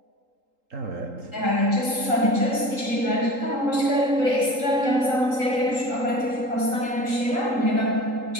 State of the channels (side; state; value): left; late; 3.8 ms